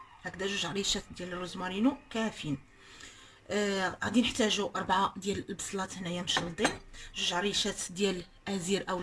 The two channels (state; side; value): identical; both; correlation 1.00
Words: هكذا جوج عريشات ديال الروزمارينو كافيين. غادي نحتاجوا 4 ديال البصلات هنايا مشلضين، جوج عريشات ديال ازير